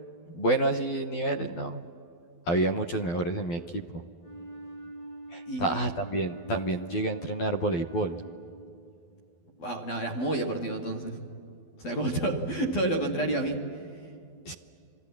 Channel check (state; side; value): late; right; 12 ms